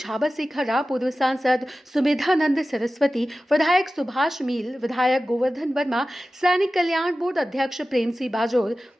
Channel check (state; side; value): normal; both; correlation 0.95